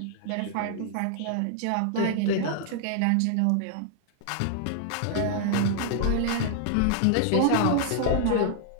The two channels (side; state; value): both; different; correlation -0.01